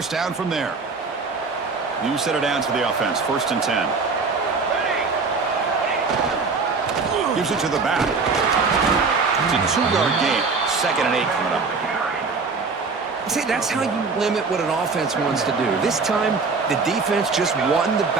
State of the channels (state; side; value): quieter; left; 4.5 dB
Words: down from there. New set of downs for the offense. 1st and 10. Gives it to the back. It's a 2-yard gain. 2nd and 8 coming up. See, that's how you limit what an offense wants to do. This time, the defense just won the